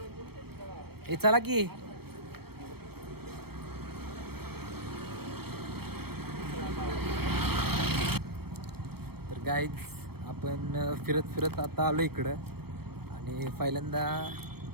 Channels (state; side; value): late; left; 0.96 ms